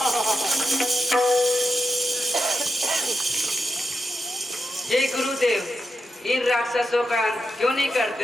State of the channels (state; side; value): normal; both; correlation 0.86